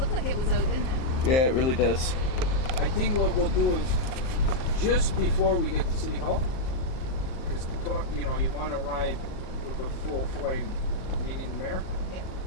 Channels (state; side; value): late; right; 38 ms